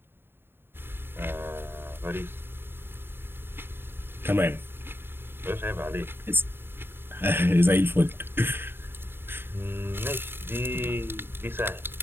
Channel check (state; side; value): late; left; 0.11 ms